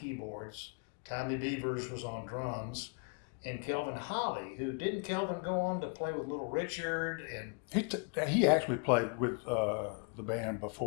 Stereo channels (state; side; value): quieter; right; 39.5 dB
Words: Tommy Beavers was on drums. And Kelvin Holly, who didn't Kelvin go on to play with Little Richard? And he actually played with the band